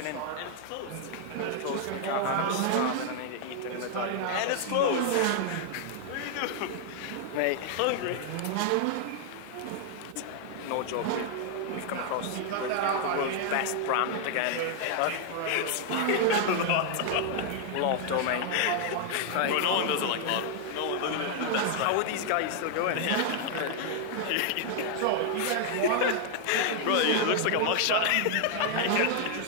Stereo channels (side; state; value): both; different; correlation 0.00